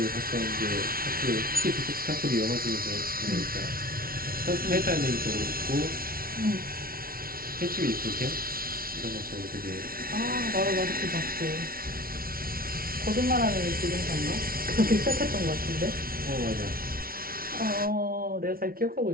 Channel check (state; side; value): late; left; 0.43 ms